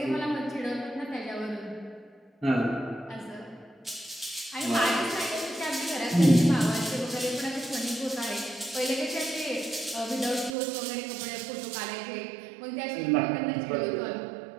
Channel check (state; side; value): drops out; left; at 10.6 s